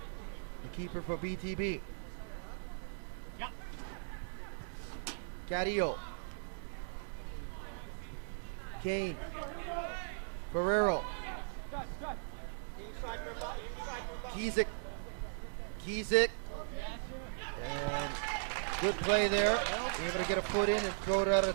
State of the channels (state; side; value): silent; left; digital silence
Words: the keeper for BTB. Cadillo. Kane. Ferrero. Kizik. Kizik. And good play there. Able to get a foot in and throw it out